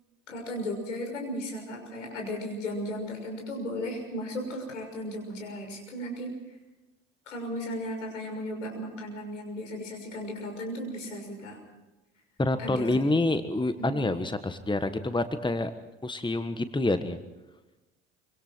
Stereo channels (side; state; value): both; normal; correlation 0.65